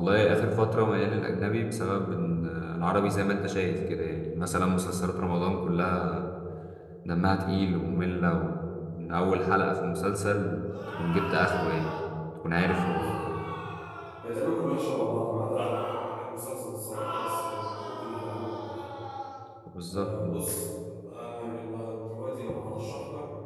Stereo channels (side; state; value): both; identical; correlation 1.00